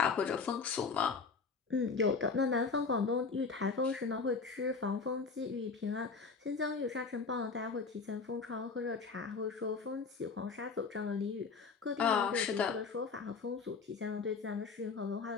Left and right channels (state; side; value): quieter; right; 4.8 dB